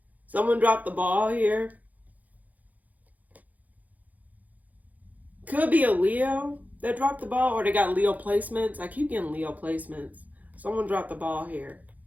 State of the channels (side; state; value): left; late; 0.079 ms